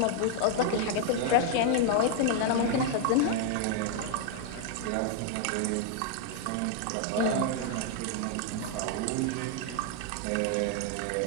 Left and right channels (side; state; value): both; different; correlation 0.00